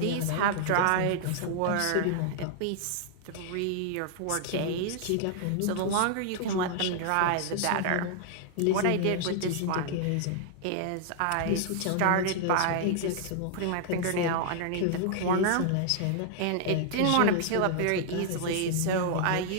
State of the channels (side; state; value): both; different; correlation 0.00